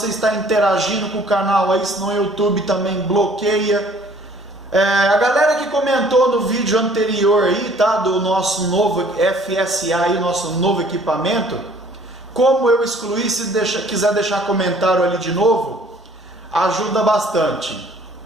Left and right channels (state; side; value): normal; both; correlation 0.56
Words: estar interagindo com o canal aí, senão o YouTube também bloqueia. A galera que comentou no vídeo anterior aí, tá, do nosso novo FSA aí, nosso novo equipamento, como eu excluí, se quiser deixar comentário ali de novo, ajuda bastante.